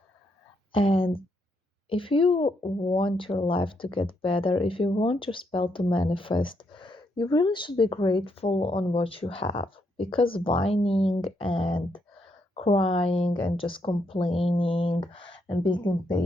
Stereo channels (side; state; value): both; normal; correlation 0.77